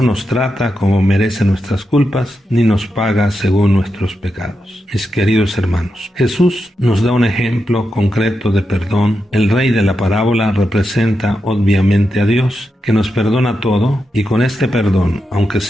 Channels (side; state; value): both; normal; correlation 0.87